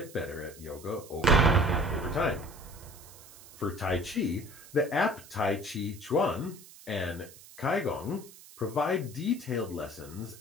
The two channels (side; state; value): right; noise; hiss, 20 dB below the sound